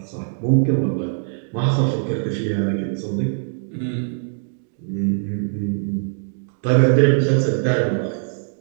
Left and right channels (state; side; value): silent; left; digital silence